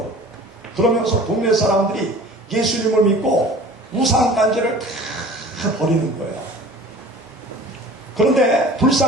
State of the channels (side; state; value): both; normal; correlation 0.44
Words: 그러면서 동네 사람들이 예수님을 믿고 우상단지를 다 버리는 거예요. 그런데